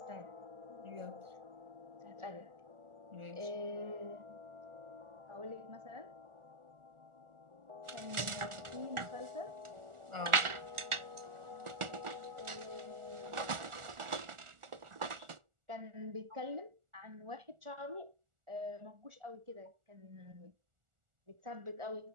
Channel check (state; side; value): late; left; 1.4 ms